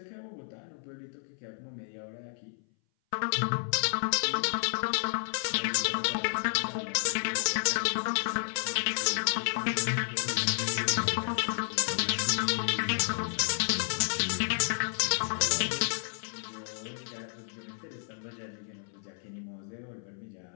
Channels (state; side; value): silent; right; 57 dB below the other